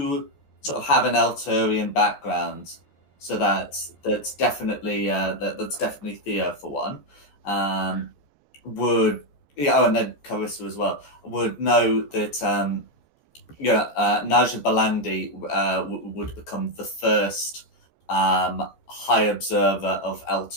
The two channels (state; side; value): late; right; 14 ms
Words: sort of have an Elturian background, so that's definitely that's definitely Theo for one, would and then Carissa as well would know that Naja Balandi would become the first High Observer of